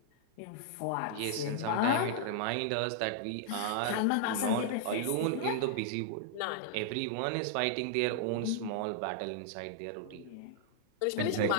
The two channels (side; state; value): both; different; correlation -0.01